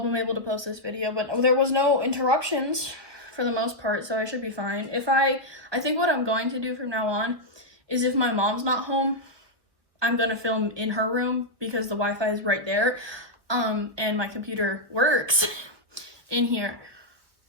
able to post this video, but there was no interruptions for the most part, so I should be fine. I think what I'm going to do from now on is if my mom's not home, I'm gonna film in her room because the Wi-Fi is right there, and my computer works in here.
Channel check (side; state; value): left; late; 1.2 ms